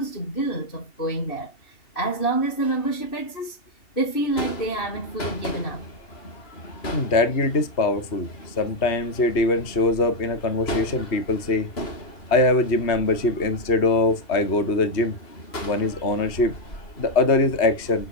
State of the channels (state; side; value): late; right; 2.7 ms